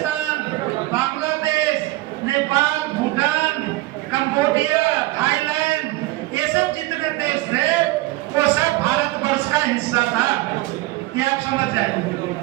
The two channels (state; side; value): quieter; left; 18.8 dB